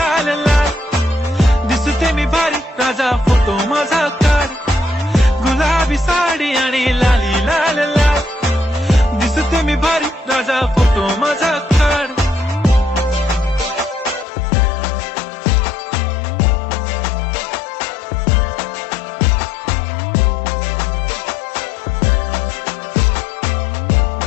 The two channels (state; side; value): drops out; right; at 14.2 s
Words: लाल, दिसते मी भारी राजा फोटो माझा काढ. गुलाबी साडी आणि लाली लाल लाल, दिसते मी भारी राजा फोटो माझा काढ.